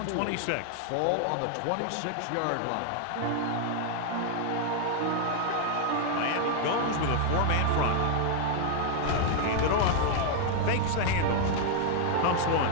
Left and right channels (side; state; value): both; different; correlation 0.00